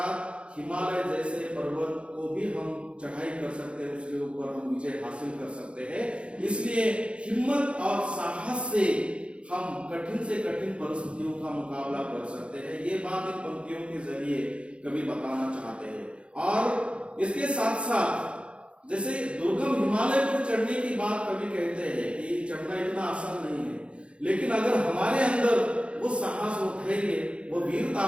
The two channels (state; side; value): late; left; 0.058 ms